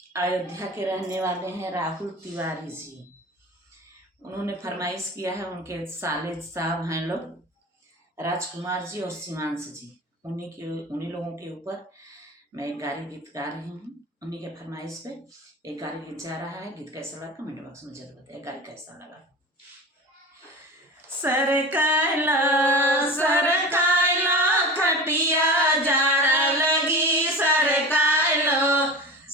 अयोध्या के रहने वाले हैं राहुल तिवारी जी। उन्होंने फरमाइश किया है, उनके साले साहब हैं लोग राजकुमार जी और शिवांश जी। उन्हीं लोगों के ऊपर मैं एक गारी गीत गा रही हूँ। उन्हीं के फरमाइश पे एक गारी गीत जा रहा है। गीत कैसा लगा कमेंट बॉक्स में जरूर बताइए। गारी कैसा लगा। सरकायला खटिया जाड़ा लगी, सरकायलो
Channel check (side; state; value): both; normal; correlation 0.33